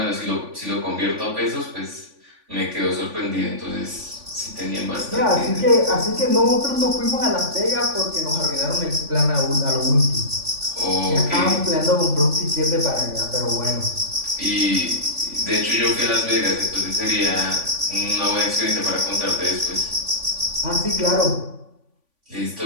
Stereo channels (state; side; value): late; left; 3.5 ms